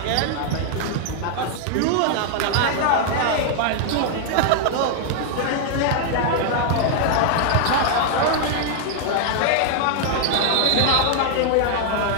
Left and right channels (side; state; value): both; different; correlation 0.00